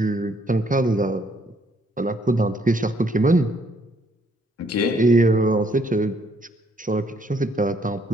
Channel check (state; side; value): normal; both; correlation 0.68